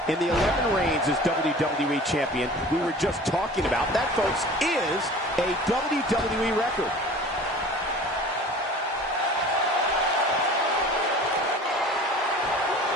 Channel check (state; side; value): normal; both; correlation 0.42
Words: In the 11 reigns as WWE Champion we were just talking about, that, folks, is a WWE record.